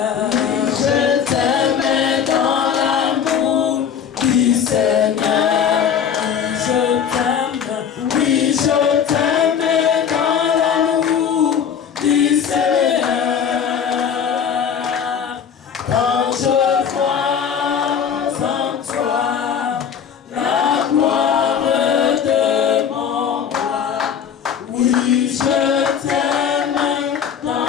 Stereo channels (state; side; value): quieter; right; 7.8 dB